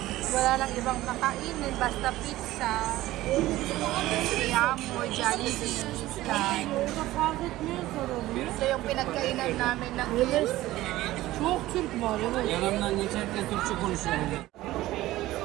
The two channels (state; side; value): quieter; left; 16.5 dB